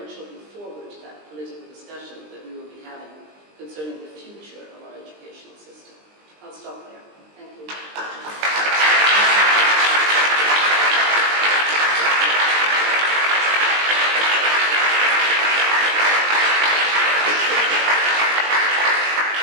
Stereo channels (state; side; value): late; left; 20 ms